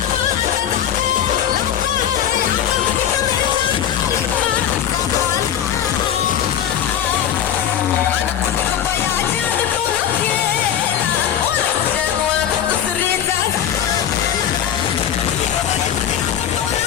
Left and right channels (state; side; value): quieter; right; 9.9 dB